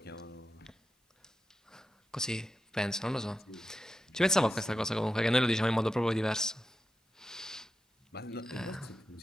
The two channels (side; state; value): both; normal; correlation 0.89